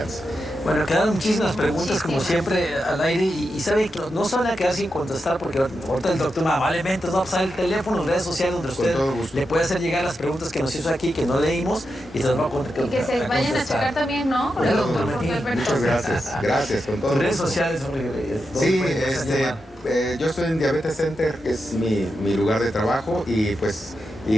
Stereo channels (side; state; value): both; normal; correlation 0.87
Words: Bueno, quedaron muchísimas preguntas como siempre al aire y sabe que no se van a quedar sin contestar porque ahorita el doctor amablemente nos va a pasar el teléfono, las redes sociales donde usted le puede hacer llegar las preguntas que nos hizo aquí, que no leímos y se las va a contestar. Y que se vayan a checar también, ¿no? Con el doctor Jorge Alberto. Muchas gracias, con todo. Redes sociales, sí, yo estoy en Diabetes Center, que es mi lugar de trabajo